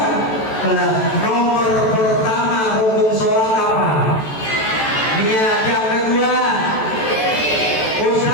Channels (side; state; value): right; late; 14 ms